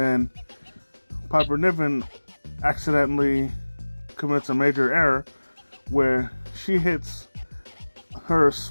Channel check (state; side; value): inverted; both; correlation -1.00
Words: Piper Niven accidentally commits a major error where she hits her